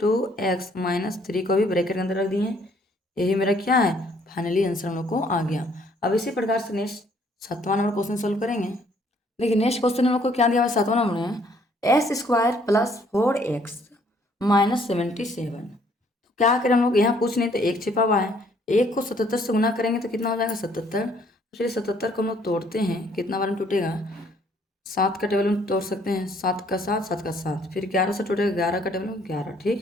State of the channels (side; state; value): both; normal; correlation 0.64